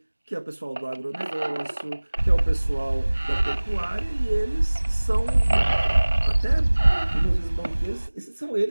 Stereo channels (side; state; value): both; inverted; correlation -1.00